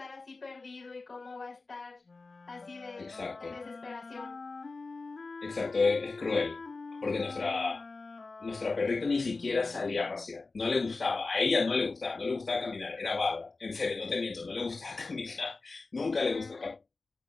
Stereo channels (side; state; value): right; quieter; 3.7 dB